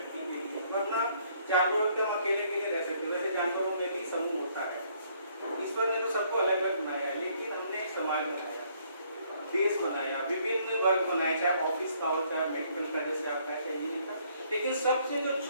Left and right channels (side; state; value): both; inverted; correlation -0.66